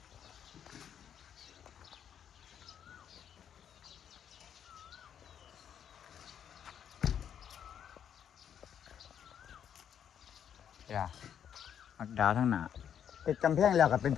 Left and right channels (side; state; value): right; quieter; 8.8 dB